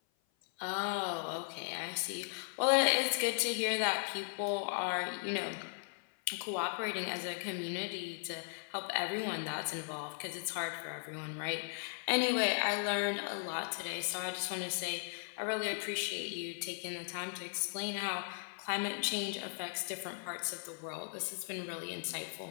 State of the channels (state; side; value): silent; right; 53 dB below the other